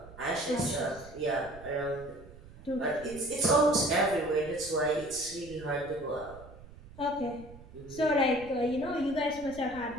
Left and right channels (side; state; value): right; noise; rumble, 18 dB below the sound